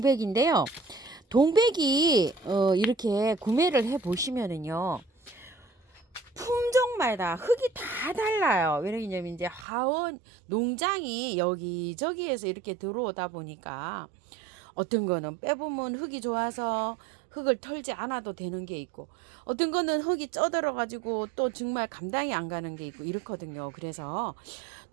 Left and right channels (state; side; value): drops out; left; at 9.7 s